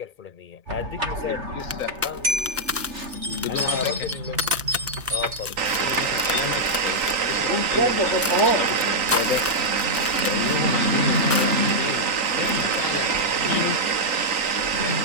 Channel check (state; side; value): normal; both; correlation -0.04